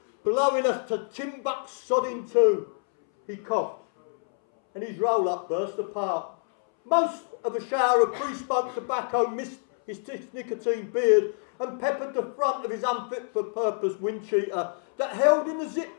blowing us to Timbuk sodding too. He coughed, and his roll-up burst apart. Most of a shower of pre-smoked tobacco missed his nicotine beard and peppered the front of his unfit-for-purpose wind cheater that held in the zip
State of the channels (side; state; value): right; silent; 60 dB below the other